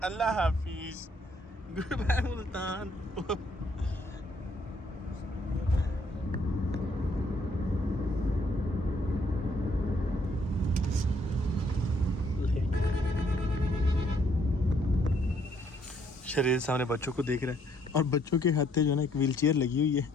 अल्लाह हाफिज, गुड बाय मुल्तान। शहरेज सामने बच्चों को देख रहा है और बच्चों के हाथ जो है ना एक व्हील चेयर लगी हुई है,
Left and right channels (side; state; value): both; normal; correlation 0.67